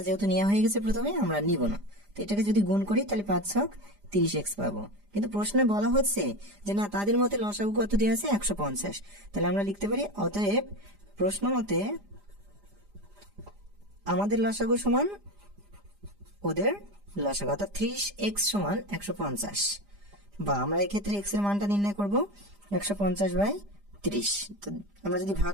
যেহেতু নেওয়া হয়ে গেছে প্রথমে, আমরা নিব না। তো এটাকে যদি গুণ করি তাহলে 5×6 30x পাবো। কিন্তু প্রশ্নে বলা হচ্ছে যে না তাদের মতে লসাগু কত দেওয়া আছে? 150। তাহলে আমরা লিখতে পারি অতএব প্রশ্ন মতে আমাদের লসাগু সমান ওদের লসাগু, অর্থাৎ 30x সমান 150। বা আমরা এক্ষেত্রে x এর মানটা নির্ণয় করব 150/30। তো আমরা যদি ভাগ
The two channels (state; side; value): late; left; 4.9 ms